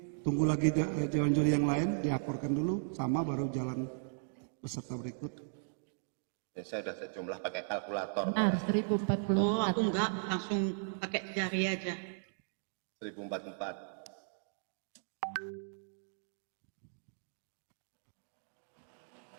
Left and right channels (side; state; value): left; silent; digital silence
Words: tunggu lagi Dewan Juri yang lain diakorkan dulu sama baru jalan peserta berikut. Ya, saya sudah sejumlah pakai kalkulator. Benar, 1044. Oh, aku enggak, langsung pakai jari aja. 1044.